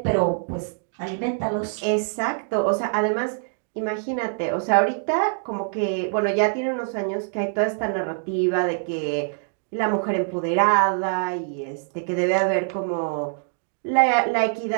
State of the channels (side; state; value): left; silent; digital silence